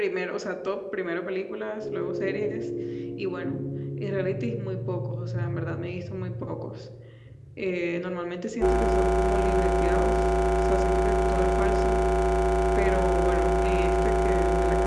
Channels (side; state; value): both; identical; correlation 1.00